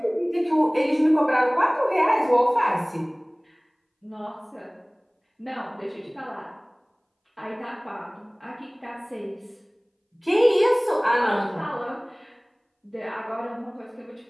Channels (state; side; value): identical; both; correlation 1.00